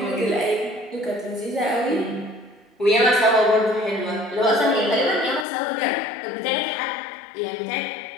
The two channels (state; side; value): drops out; right; at 5.5 s